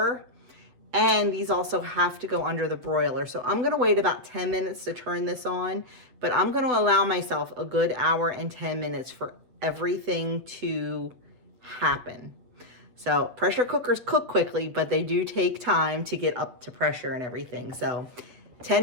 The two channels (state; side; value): late; left; 8.2 ms